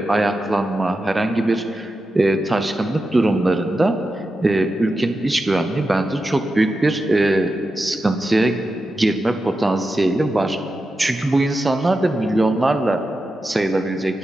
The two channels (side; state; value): both; normal; correlation 0.90